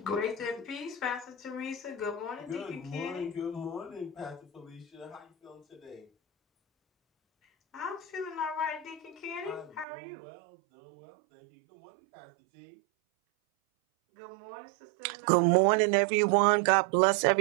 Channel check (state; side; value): drops out; left; at 9.9 s